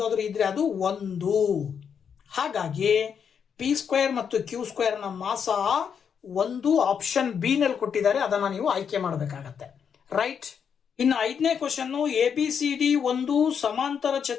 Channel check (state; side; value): quieter; right; 7.2 dB